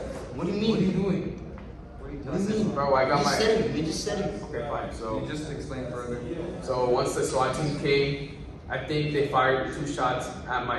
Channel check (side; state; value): both; identical; correlation 1.00